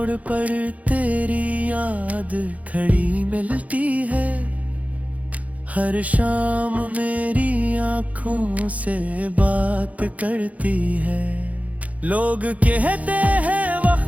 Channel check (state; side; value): late; left; 0.070 ms